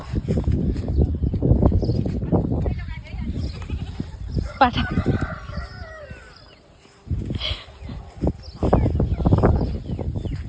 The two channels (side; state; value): both; identical; correlation 1.00